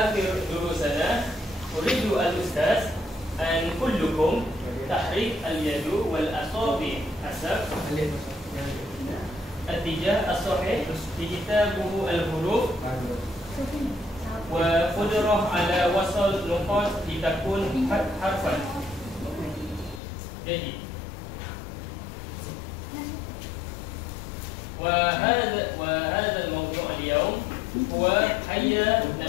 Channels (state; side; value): drops out; right; at 20.0 s